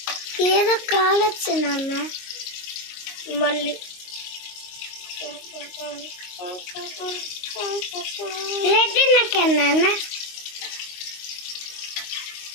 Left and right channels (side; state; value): right; late; 22 ms